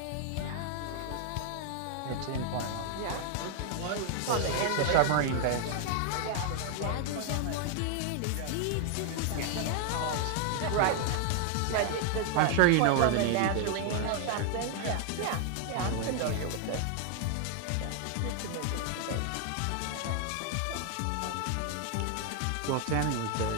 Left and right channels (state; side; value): different; both; correlation 0.00